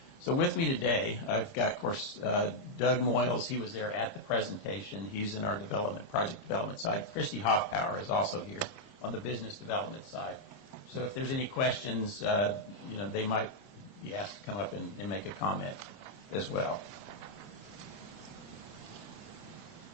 So with me today, I've got, of course, Doug Moyles. He was there at the presentation. He's in our project development side. Christy Hoffpower is also here on the business development side. So if there's any questions, they might be asked to come up and make a comment as well.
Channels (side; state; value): right; late; 30 ms